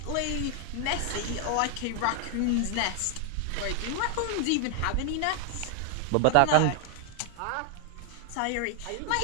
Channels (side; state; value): both; different; correlation 0.00